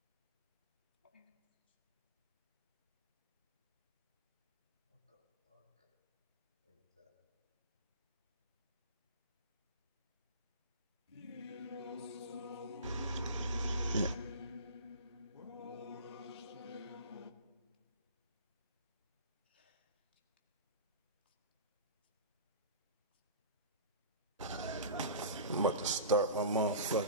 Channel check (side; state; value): both; inverted; correlation -0.31